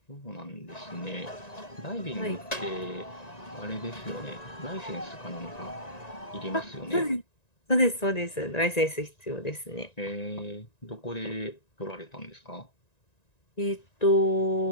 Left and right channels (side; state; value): right; late; 1.9 ms